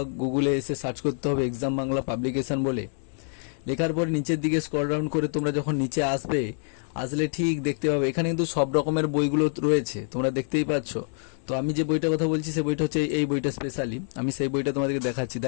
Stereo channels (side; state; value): right; silent; 61 dB below the other